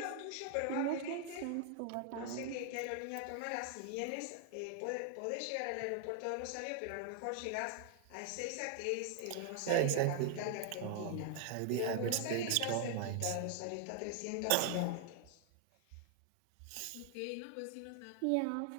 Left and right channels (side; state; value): both; different; correlation 0.00